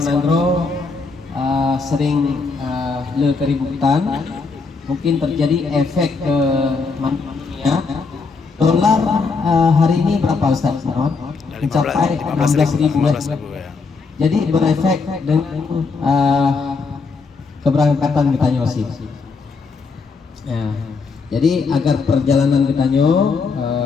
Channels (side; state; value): right; quieter; 4.5 dB